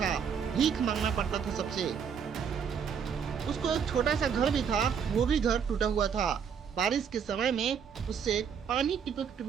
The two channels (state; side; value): quieter; left; 7.1 dB